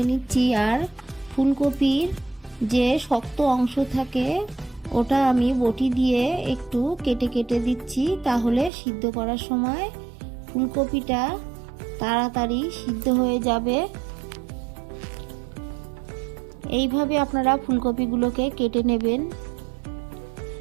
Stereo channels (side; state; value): left; drops out; at 8.7 s